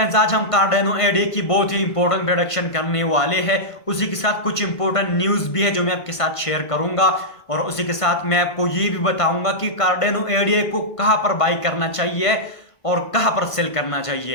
आज हम कार्डेनो एडे की बहुत ही इंपॉर्टेंट प्रोडक्शन करने वाले हैं। उसी के साथ कुछ इंपॉर्टेंट न्यूज़ भी है जो मैं आपके साथ शेयर करूंगा। और उसी के साथ मैं आपको ये भी बताऊंगा कि कार्डेनो एडे को कहां पर बाई करना चाहिए और कहां पर सेल करना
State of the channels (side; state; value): right; late; 1.5 ms